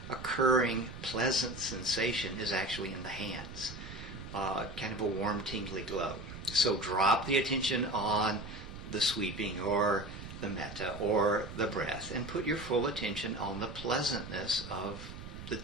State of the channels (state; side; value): noise; right; rumble, 11 dB below the sound